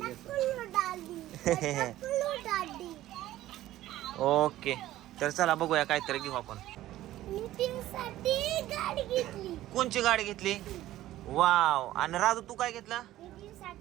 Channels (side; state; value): left; quieter; 14.7 dB